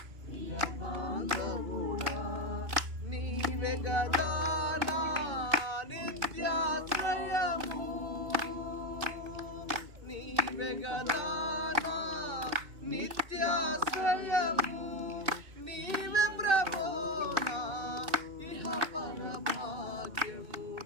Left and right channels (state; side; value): late; left; 2.6 ms